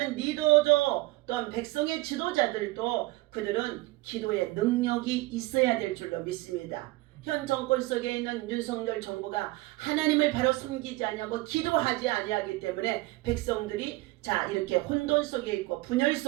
리더죠, 또한 백성의 지도자들도 그들은 기도의 능력이 있어야 될 줄로 믿습니다. 현 정권 속에 있는 윤석열 정부가 하나님을 바로 섬기지 아니하고 기도하지 아니하기 때문에 백성들이 자 이렇게 혼돈 속에 있고 분열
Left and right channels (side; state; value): left; quieter; 20.5 dB